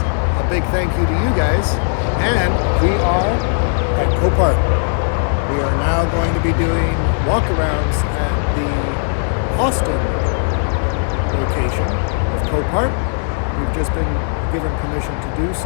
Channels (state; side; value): silent; right; 66 dB below the other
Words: a big thank you to you guys. And we are at Copart. We are now going to be doing walkarounds at the Austin location of Copart. We've just been given permission to do